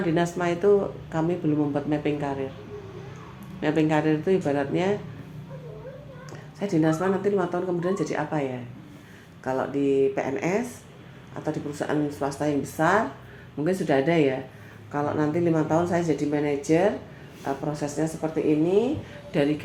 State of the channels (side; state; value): both; identical; correlation 1.00